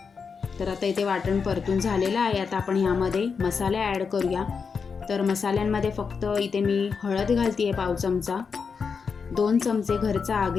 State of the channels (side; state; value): right; quieter; 5.6 dB